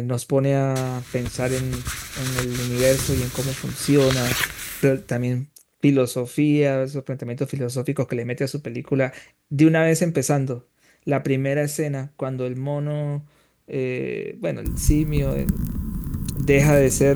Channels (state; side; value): identical; both; correlation 1.00